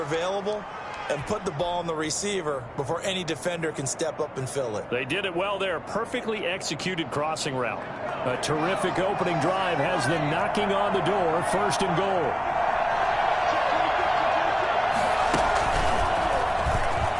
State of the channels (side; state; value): both; identical; correlation 1.00